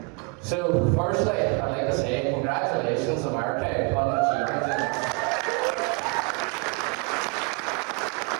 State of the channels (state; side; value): quieter; left; 32.0 dB